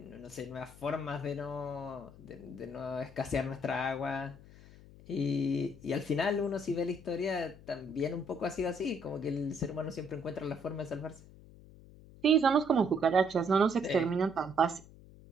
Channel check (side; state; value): left; noise; hum, 20 dB below the sound